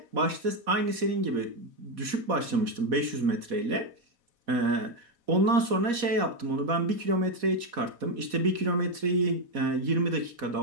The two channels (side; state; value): left; late; 4.1 ms